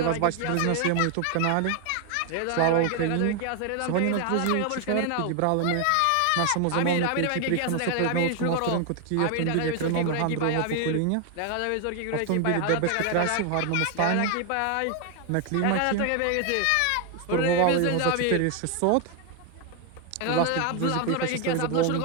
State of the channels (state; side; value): different; both; correlation 0.01